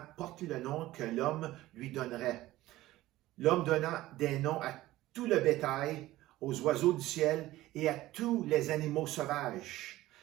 porte le nom que l'homme lui donnerait. L'homme donna des noms à tout le bétail, aux oiseaux du ciel et à tous les animaux sauvages.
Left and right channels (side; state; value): left; quieter; 16.5 dB